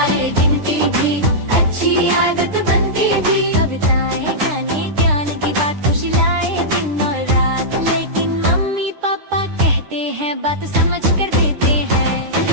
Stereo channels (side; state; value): left; late; 9.9 ms